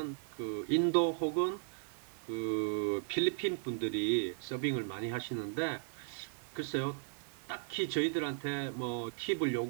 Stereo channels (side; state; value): left; silent; digital silence